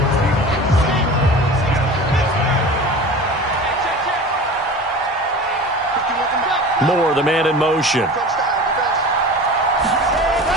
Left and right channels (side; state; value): both; normal; correlation 0.36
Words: Moore, the man in motion.